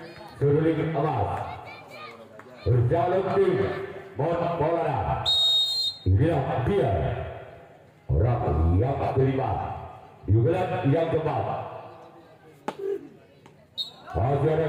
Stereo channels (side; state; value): both; identical; correlation 1.00